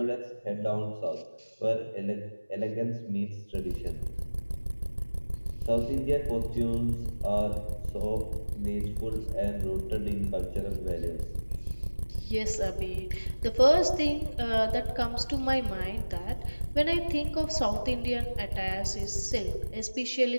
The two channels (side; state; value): both; inverted; correlation -1.00